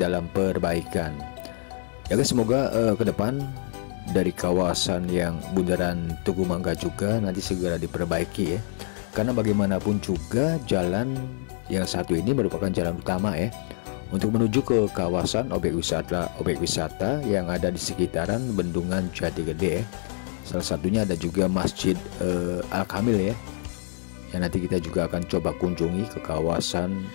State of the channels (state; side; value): silent; right; 61 dB below the other